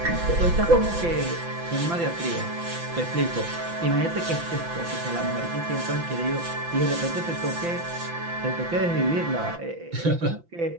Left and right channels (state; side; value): late; left; 5.9 ms